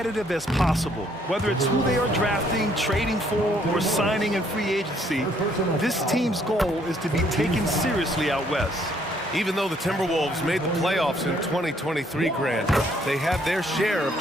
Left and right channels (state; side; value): normal; both; correlation 0.66